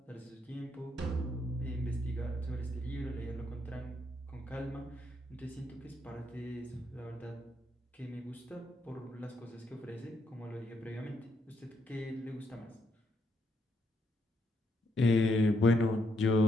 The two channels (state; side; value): normal; both; correlation 0.76